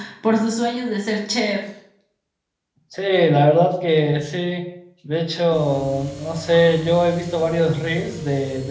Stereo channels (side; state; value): both; identical; correlation 1.00